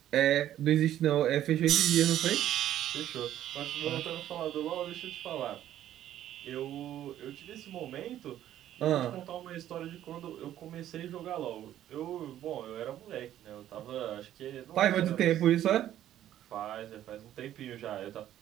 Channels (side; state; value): left; quieter; 12.0 dB